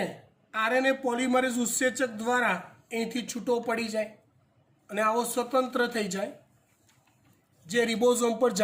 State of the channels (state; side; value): identical; both; correlation 1.00